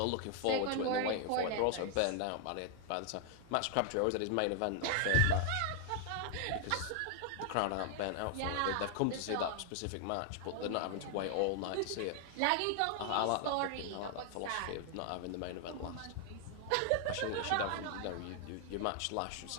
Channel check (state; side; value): different; both; correlation 0.00